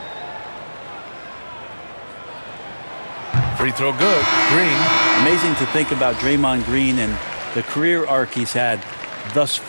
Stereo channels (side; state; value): both; inverted; correlation -1.00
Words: Free throw good. Green. Amazing to think about Draymond Green and the career arc he's had thus